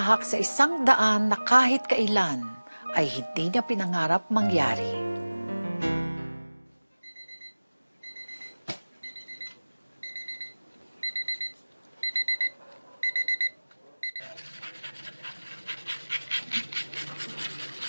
sa isang daan na kahit kailan ay hindi niya pinangarap mangyari.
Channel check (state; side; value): inverted; both; correlation -1.00